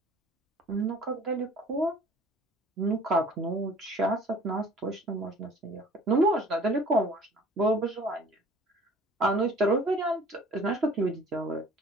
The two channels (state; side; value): normal; both; correlation 0.50